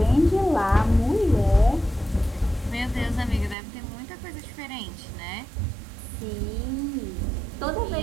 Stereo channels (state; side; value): drops out; left; at 3.6 s